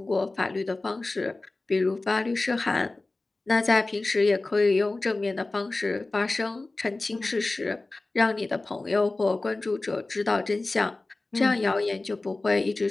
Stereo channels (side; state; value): right; quieter; 3.2 dB